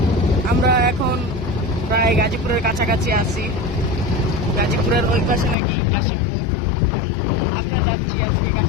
আমরা এখন প্রায় গাজীপুরের কাছাকাছি আছি। গাজীপুরের ওই পাশে নাকি কাশীপুর। আমরা যাচ্ছি আজকে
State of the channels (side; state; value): right; drops out; at 5.6 s